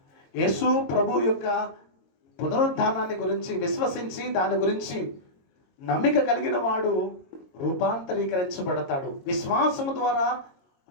యేసు ప్రభు యొక్క పునరుద్ధానాన్ని గురించి విశ్వసించి దాని గురించి నమ్మిక కలిగిన వాడు రూపాంతరీకరించబడతాడు. విశ్వాసము ద్వారా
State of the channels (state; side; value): late; right; 22 ms